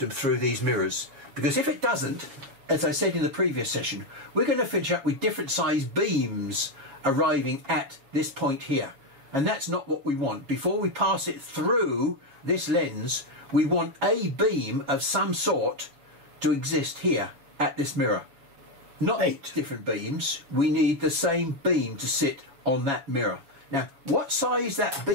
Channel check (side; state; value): left; late; 7.2 ms